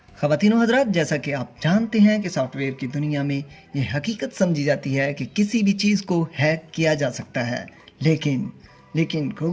ख़वातीन व हज़रात, जैसा कि आप जानते हैं कि सॉफ्टवेयर की दुनिया में ये हकीकत समझी जाती है कि किसी भी चीज़ को हैक किया जा सकता है, लेकिन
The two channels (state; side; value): identical; both; correlation 1.00